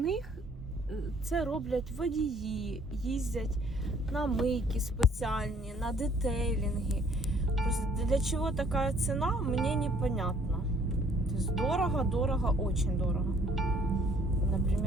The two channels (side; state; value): both; normal; correlation 0.60